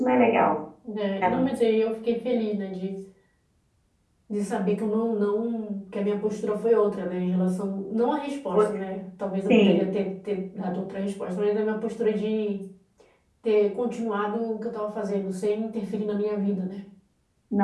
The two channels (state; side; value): identical; both; correlation 1.00